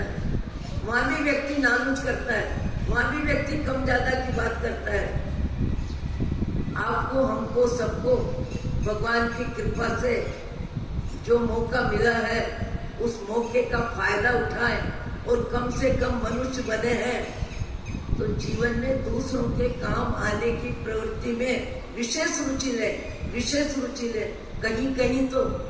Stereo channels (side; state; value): both; identical; correlation 1.00